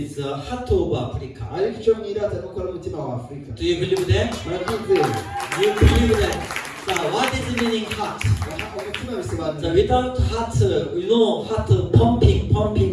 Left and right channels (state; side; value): identical; both; correlation 1.00